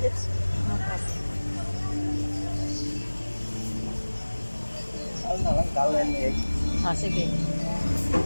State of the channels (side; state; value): both; inverted; correlation -1.00